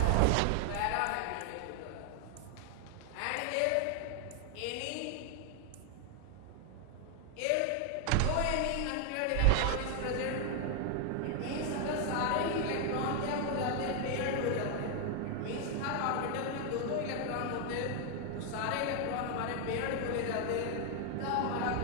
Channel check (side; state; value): both; different; correlation 0.00